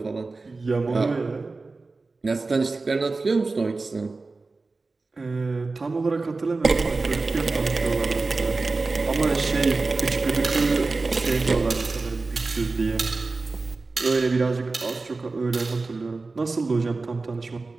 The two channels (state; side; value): quieter; left; 3.7 dB